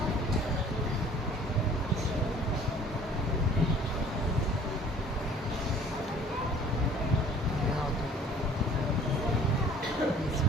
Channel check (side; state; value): both; normal; correlation 0.52